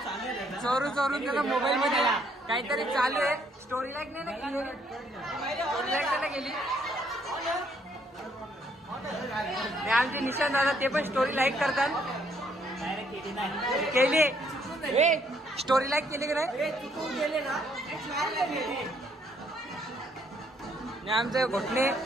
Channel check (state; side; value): normal; both; correlation 0.68